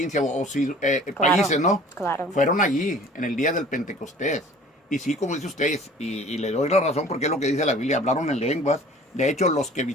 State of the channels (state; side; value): normal; both; correlation 0.48